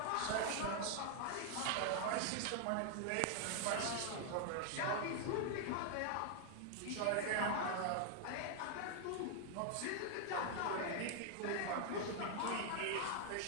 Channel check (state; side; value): different; both; correlation 0.00